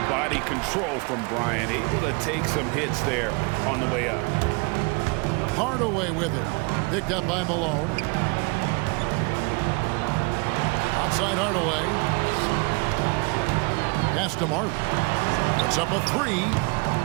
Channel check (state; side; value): quieter; left; 29.6 dB